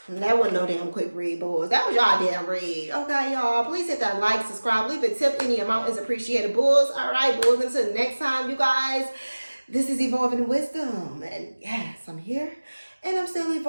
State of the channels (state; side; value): inverted; both; correlation -1.00